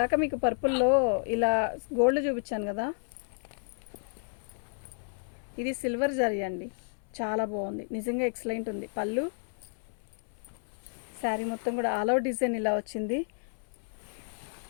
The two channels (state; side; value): silent; right; 57 dB below the other